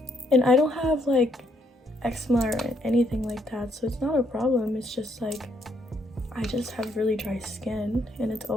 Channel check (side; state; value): both; normal; correlation 0.72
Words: And I don't have like eczema or anything like that, so it's not a problem. It's just like I just have really dry skin and it's